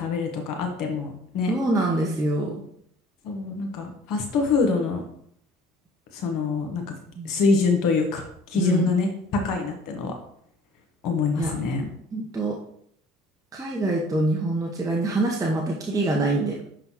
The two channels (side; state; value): both; normal; correlation 0.53